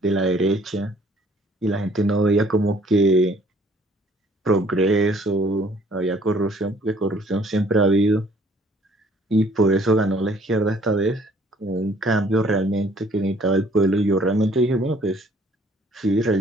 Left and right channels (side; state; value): both; normal; correlation 0.59